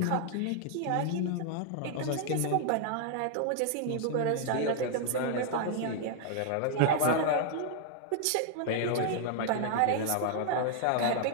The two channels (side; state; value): both; different; correlation 0.00